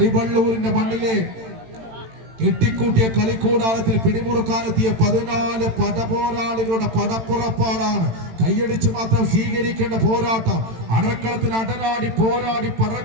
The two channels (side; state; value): left; late; 18 ms